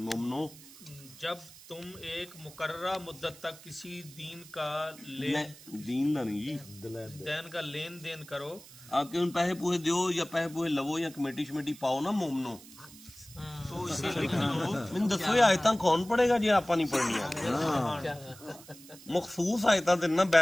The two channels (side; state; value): right; noise; hiss, 19 dB below the sound